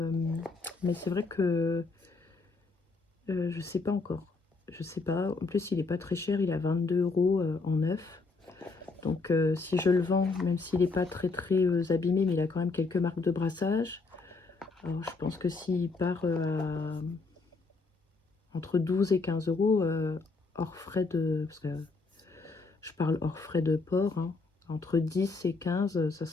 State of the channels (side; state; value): right; quieter; 3.9 dB